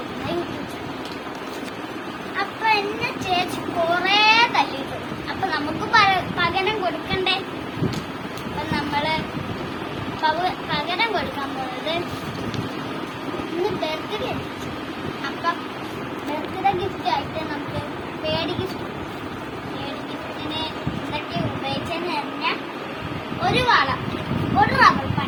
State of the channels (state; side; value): identical; both; correlation 1.00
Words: യൂട്യൂബ് ചാനൽ. അപ്പൊ എന്നെ ചേച്ചി കൊറേ തല്ലിട്ടു. അപ്പൊ നമുക്ക് പകരം കൊടുക്കണ്ടേ? അപ്പൊ നമ്മള് പകരം കൊടുക്കാൻ പോകുന്നത് ഇന്ന് ബർത്ത്ഡേ. അപ്പൊ ബർത്ത്ഡേ ഗിഫ്റ്റ് ആയിട്ട് നമുക്ക് പേടി ഗിഫ്റ്റിന് എന്തൊക്കെ ഉപയോഗിച്ചെന്ന് പറഞ്ഞാൽ ഒരു വള, ഒരു റബ്ബർ